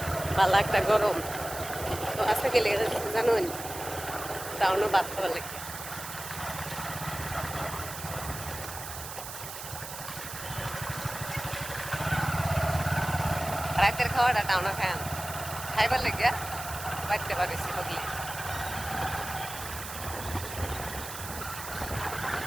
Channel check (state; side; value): noise; right; hiss, 9 dB below the sound